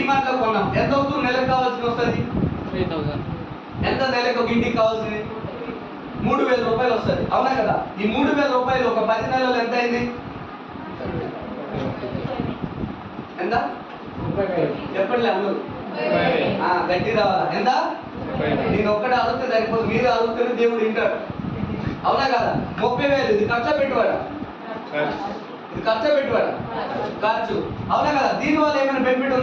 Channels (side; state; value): both; identical; correlation 1.00